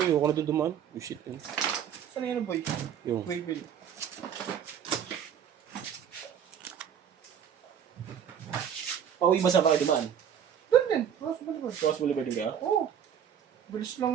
ayoko na doon dumaan. Oh shit. Saan yun, boy? Yung. Wayville. Pauwi ba sa kayo dumaan? Doon din, Ross Boulevard. Cross Boulevard din kaya? Oo. Bilis lang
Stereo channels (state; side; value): quieter; left; 8.7 dB